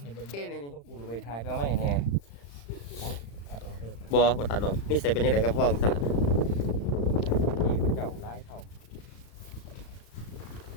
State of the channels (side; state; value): right; late; 35 ms